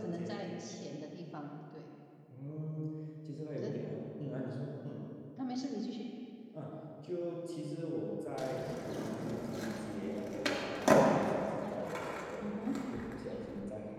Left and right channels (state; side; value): identical; both; correlation 1.00